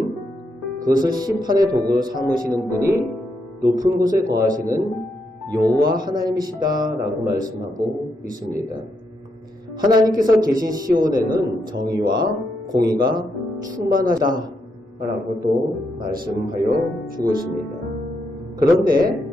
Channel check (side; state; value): both; normal; correlation 0.80